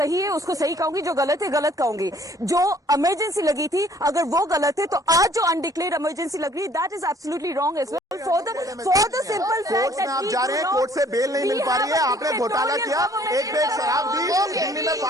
है उसको सही कहूंगी, जो गलत है गलत कहूंगी। जो इमरजेंसी लगी थी, अगर वो गलत है, तो आज जो अनडिक्लेयर्ड इमरजेंसी लग रही है, that is absolutely wrong as well. For the simple court में आप जा रहे हैं, कोर्ट से बेल नहीं मिल पा रही है। आपने घोटाला किया, एक बेग शराब दी, दिल्ली में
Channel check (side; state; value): both; normal; correlation 0.58